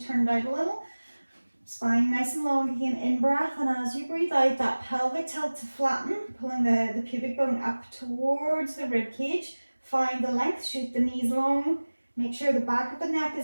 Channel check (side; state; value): both; inverted; correlation -1.00